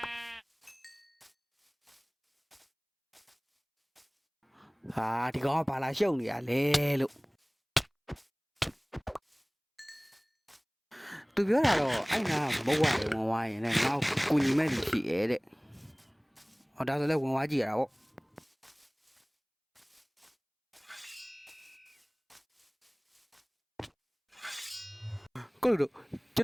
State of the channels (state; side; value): identical; both; correlation 1.00